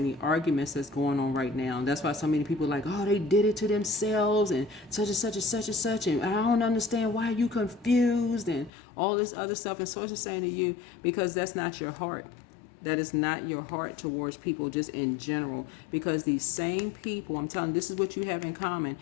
arguments that's going on right now. And that's why so many people are like, oh, they did it to themselves and such and such and such and such. And I don't understand why you confused and all this other stuff. And Source is saying to you, because that's not your heart. That is not your heart towards people just in general. Because these same people, I'm telling you, this is what you have in common.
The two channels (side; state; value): right; drops out; at 8.7 s